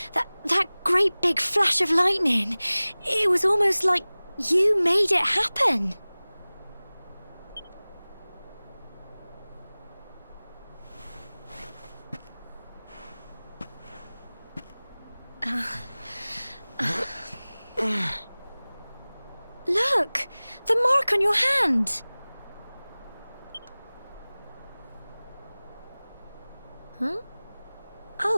That great big flash of lightning. It was almost like you made it happen. Look, the mark on your hand. Huh?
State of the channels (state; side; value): inverted; both; correlation -0.99